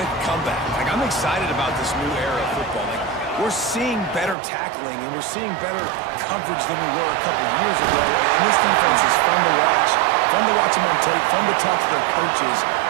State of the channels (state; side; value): drops out; left; at 4.4 s